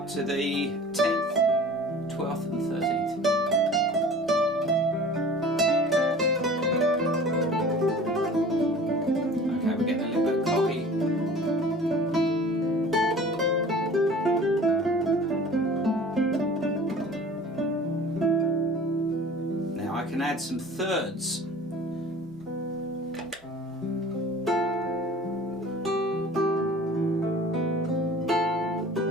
to the 10th, 12th and 13th. Okay, we're getting a little bit cocky. Now I can add some thirds.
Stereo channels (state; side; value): normal; both; correlation 0.44